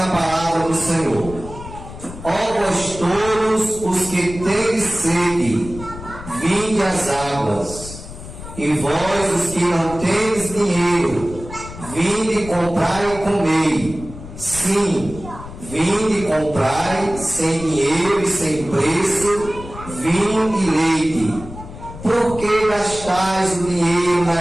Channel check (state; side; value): noise; left; rumble, 13 dB below the sound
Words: palavra do Senhor: ó vós todos os que tendes sede, vinde às águas, e vós os que não tendes dinheiro, vinde comprai e comei. Sim, vinde comprai sem dinheiro e sem preço vinho e leite. Por que gastais o dinheiro